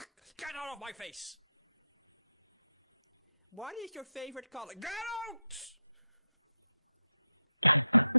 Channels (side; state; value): both; inverted; correlation -0.88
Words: Get out of my face! What is your favorite color? Get out!